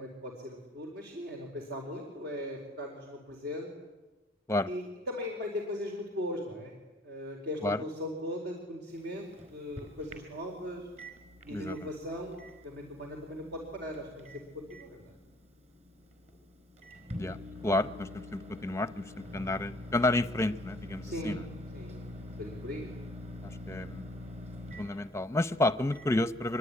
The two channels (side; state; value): both; normal; correlation 0.58